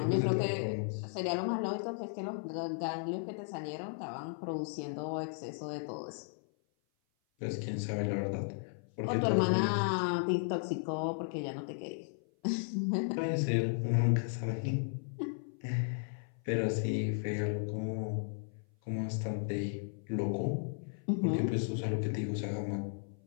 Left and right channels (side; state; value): right; silent; 54 dB below the other